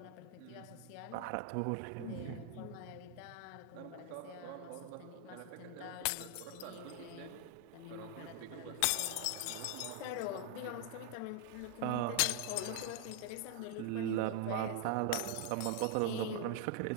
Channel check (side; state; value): both; different; correlation 0.00